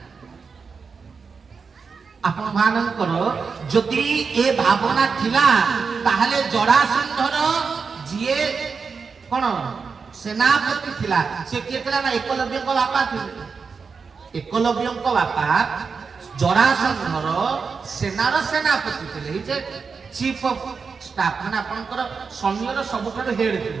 आपण मानकर जदि ए भावना थिला ताहले जरासंधर जिए कोन सेनापति थिला से के थिला ना एकलव्य को बापा थिले एकलव्य को बापा जरासंधर सेनार सेनापति थिले जे चीफ ऑफ स्टाफ माने आपनकर सैन्यर सबुठार हेड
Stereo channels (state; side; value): quieter; left; 5.3 dB